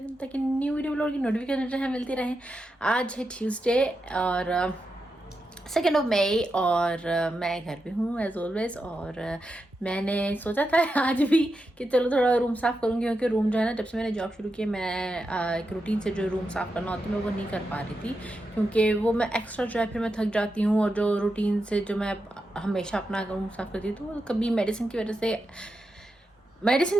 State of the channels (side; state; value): both; normal; correlation 0.87